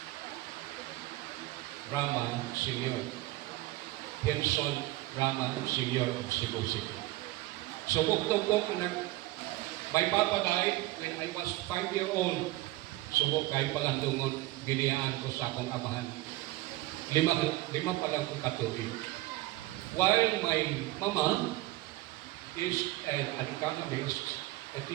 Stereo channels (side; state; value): left; quieter; 18.2 dB